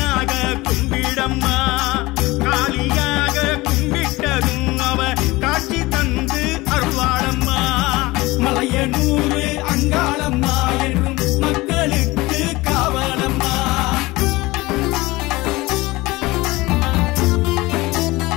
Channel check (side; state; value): right; quieter; 20.9 dB